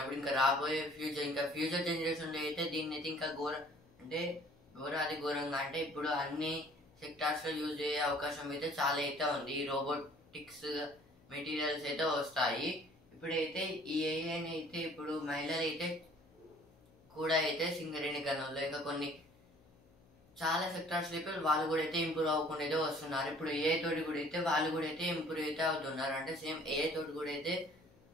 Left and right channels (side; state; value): left; noise; hum, 29 dB below the sound